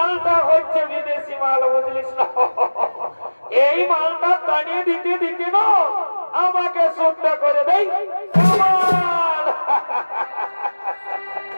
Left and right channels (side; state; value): both; inverted; correlation -1.00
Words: হচ্ছে বিদেশি মাল, বুঝলিস না? এই মালটা টানিয়ে দিতে দিতে না আমাকে সুটটা করে দেয়।